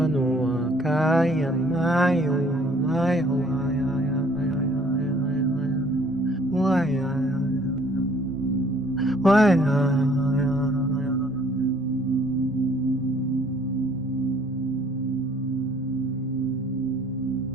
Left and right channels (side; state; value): both; normal; correlation 0.58